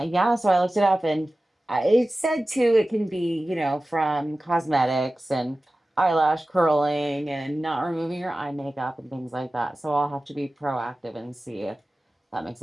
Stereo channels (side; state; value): both; normal; correlation 0.96